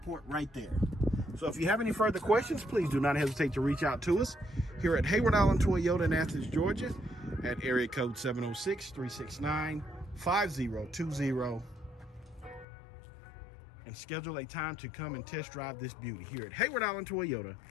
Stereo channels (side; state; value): right; drops out; at 12.7 s